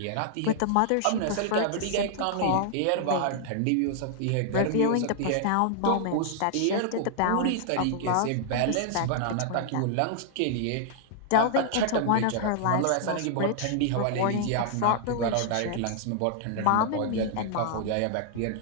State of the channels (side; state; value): both; different; correlation -0.01